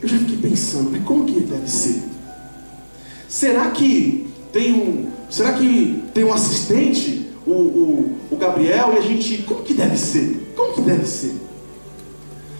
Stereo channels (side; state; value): both; inverted; correlation -1.00